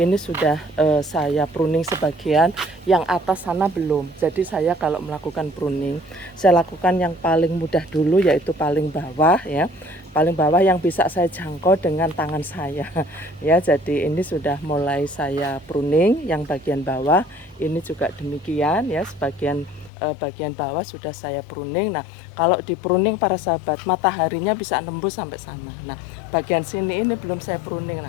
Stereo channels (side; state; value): right; drops out; at 19.9 s